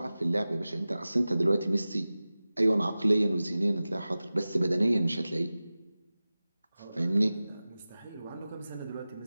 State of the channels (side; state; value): both; inverted; correlation -0.96